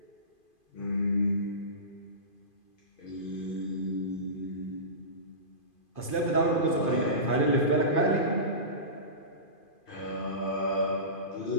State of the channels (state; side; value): late; right; 2.5 ms